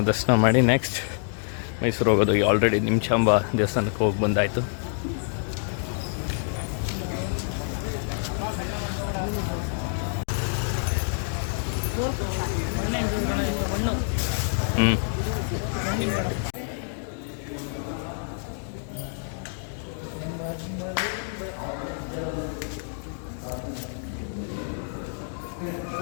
ದರ್ಶನ ಮಾಡಿ ನೆಕ್ಸ್ಟ್ ಮೈಸೂರು ಹೋಗೋದು. ಆಲ್ರೆಡಿ ನಿಮಿಷಾಂಬ ದೇವಸ್ಥಾನಕ್ಕೆ ಹೋಗಿ ಬಂದಾಯಿತು.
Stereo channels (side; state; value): right; silent; digital silence